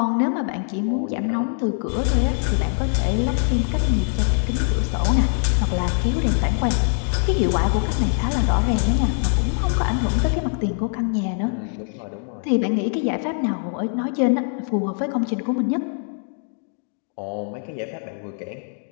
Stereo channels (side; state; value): right; silent; 59 dB below the other